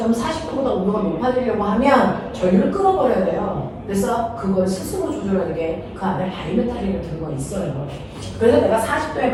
40도보다 온도가 높아지려고 하면 전류를 끌어버려야 돼요. 그래서 그걸 스스로 조절하는 게 그 안에 바리메탈이 같은 거 있어요. 그래서 내가 40도에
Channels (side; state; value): both; identical; correlation 1.00